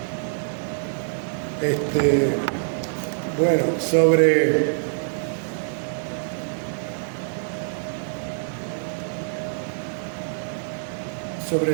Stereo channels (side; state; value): left; silent; 62 dB below the other